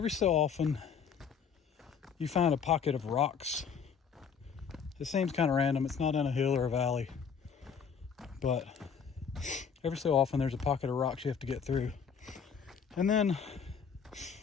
so often you find a pocket of rocks. It seems kind of random. It's not in a hill or a valley, but every so often there's a pocket of rocks you have to get through. And then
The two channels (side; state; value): right; quieter; 6.7 dB